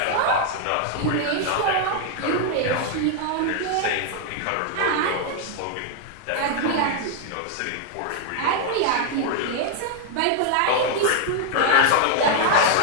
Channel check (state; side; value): different; both; correlation 0.00